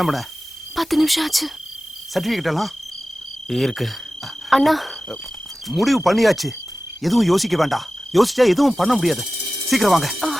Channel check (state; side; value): normal; both; correlation 0.96